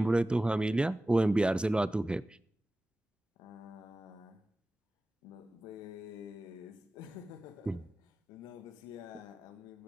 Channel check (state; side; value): normal; both; correlation 0.96